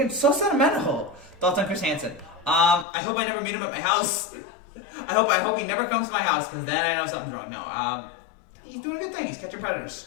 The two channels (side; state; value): right; drops out; at 2.9 s